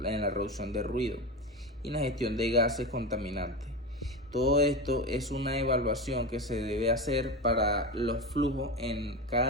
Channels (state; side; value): normal; both; correlation 0.21